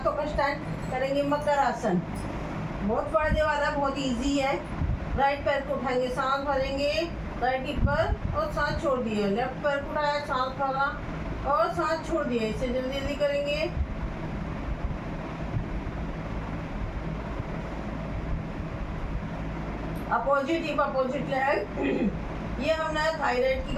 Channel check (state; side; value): identical; both; correlation 1.00